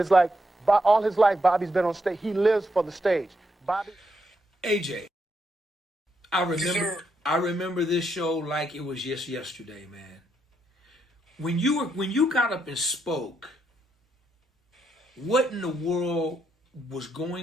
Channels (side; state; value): both; normal; correlation 0.79